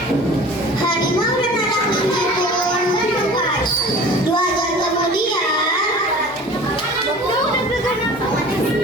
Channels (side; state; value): both; normal; correlation 0.42